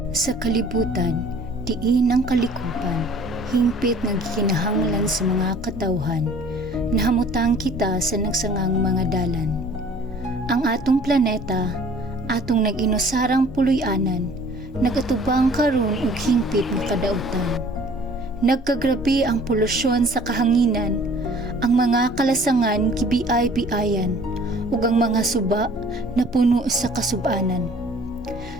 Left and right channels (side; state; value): both; normal; correlation 0.52